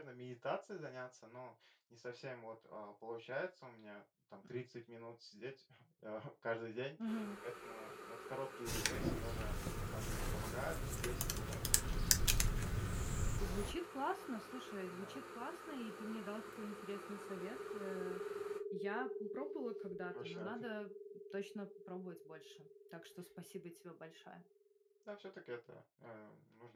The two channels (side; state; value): both; identical; correlation 1.00